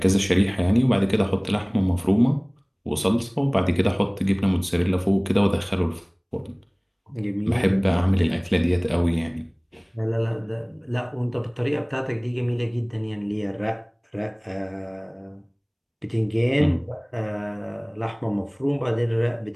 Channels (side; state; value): both; identical; correlation 1.00